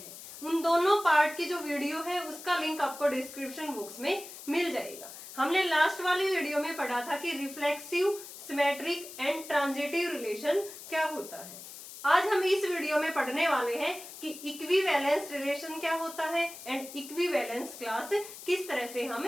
उन दोनों पार्ट की जो वीडियो है उसका लिंक आपको डिस्क्रिप्शन बॉक्स में मिल जाएगा. हमने लास्ट वाली वीडियो में पढ़ा था कि reflexive, symmetric and transitive relation क्या होता है. आज हम इस वीडियो में पढ़ने वाले हैं कि इक्विवेलेंस रिलेशन क्या होता है एंड इक्विवेलेंस क्लास किस तरह से हम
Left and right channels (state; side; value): noise; left; hiss, 14 dB below the sound